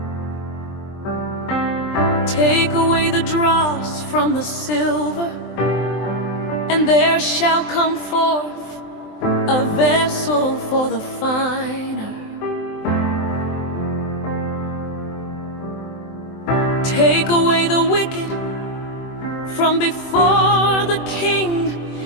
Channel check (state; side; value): late; right; 23 ms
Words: Take away the dross from the silver, and there shall come forth a vessel for the finer. Take away the wicked from before the king,